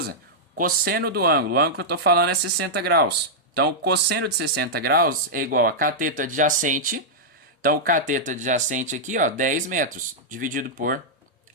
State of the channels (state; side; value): normal; both; correlation -0.08